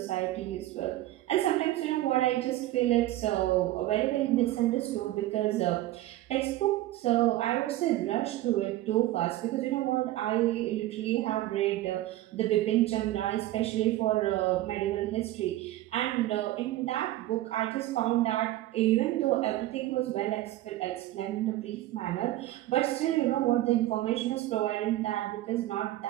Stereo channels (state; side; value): quieter; left; 15.5 dB